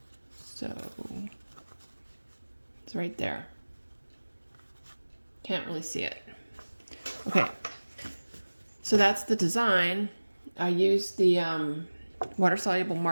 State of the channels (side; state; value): both; inverted; correlation -1.00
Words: so it's right there. Can't really see it. Okay, so that's the design. I used the water-soluble